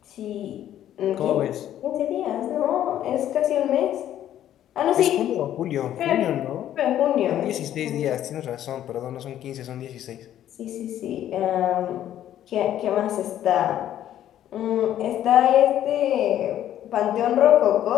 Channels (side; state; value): right; quieter; 11.6 dB